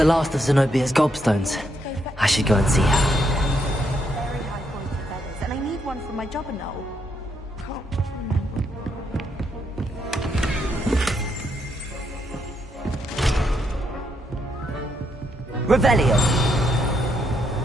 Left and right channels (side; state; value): both; normal; correlation 0.76